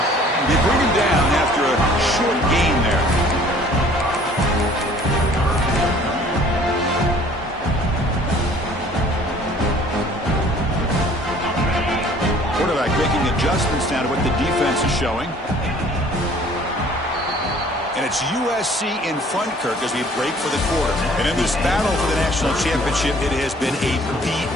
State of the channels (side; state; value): both; normal; correlation 0.54